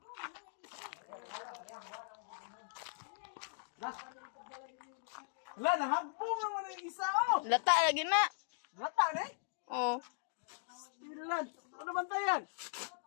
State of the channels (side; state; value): right; silent; digital silence